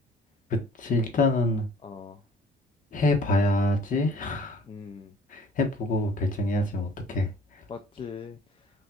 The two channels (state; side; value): normal; both; correlation 0.53